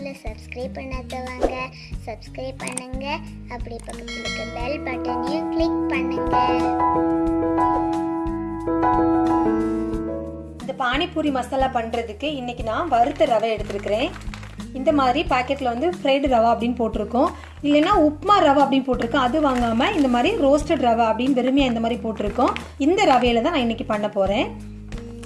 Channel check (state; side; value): identical; both; correlation 1.00